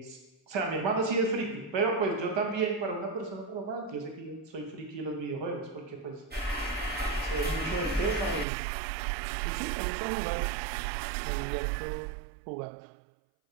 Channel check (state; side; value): drops out; left; at 8.5 s